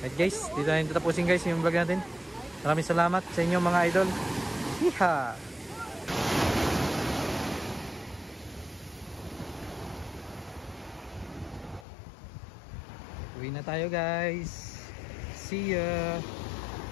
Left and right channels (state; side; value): drops out; right; at 11.9 s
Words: guys, dito na rin tapusin guys yung vlog natin. Maraming salamat sa inyo mga idol. Hiha! Uwi na tayo guys. See ya.